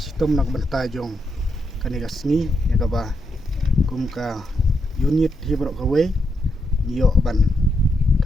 nak benta jong kaniga sngi ya ka ba kum ka unit hi barok ka we ngiyo ban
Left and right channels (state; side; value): normal; both; correlation 0.81